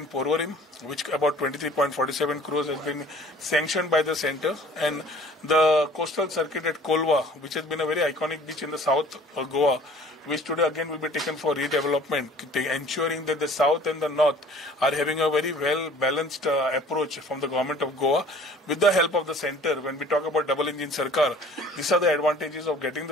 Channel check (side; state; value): both; normal; correlation 0.50